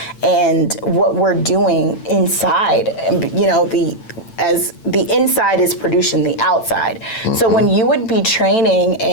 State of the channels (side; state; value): right; late; 9.0 ms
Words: and what we're doing inside. As the inside is producing the outside. So when you would be training